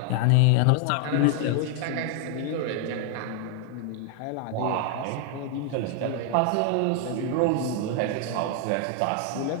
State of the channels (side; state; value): both; different; correlation 0.00